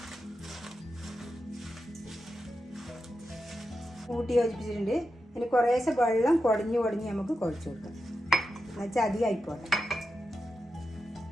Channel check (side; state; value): both; normal; correlation 0.89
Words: കൂട്ടി യോജിപ്പിച്ചിട്ടുണ്ട്. ഇനി കുറേശ്ശെ വെള്ളം കുടഞ്ഞ് നമുക്ക് കുഴച്ച് കൊടുക്കാം. എന്നുവെച്ചാൽ അധികം ആയിപ്പോട്ടെ.